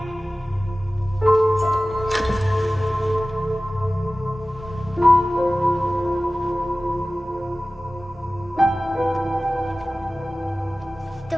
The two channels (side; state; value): both; normal; correlation 0.97